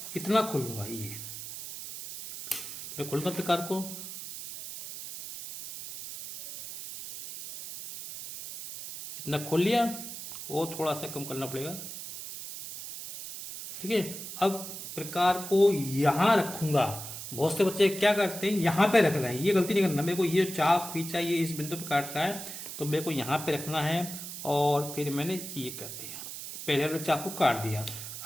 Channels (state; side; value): noise; right; hiss, 9 dB below the sound